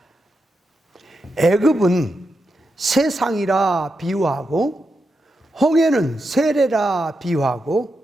애굽은 세상이라 비유하고 홍해는 세례라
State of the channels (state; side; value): normal; both; correlation 0.86